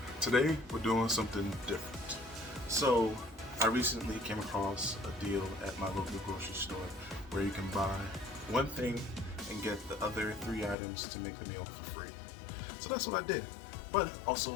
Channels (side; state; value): right; drops out; at 10.8 s